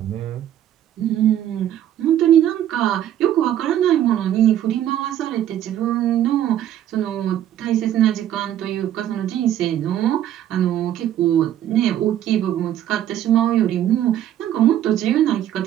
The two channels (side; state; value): left; quieter; 11.5 dB